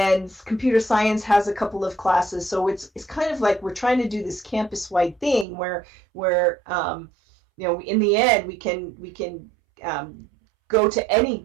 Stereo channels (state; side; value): drops out; left; at 5.5 s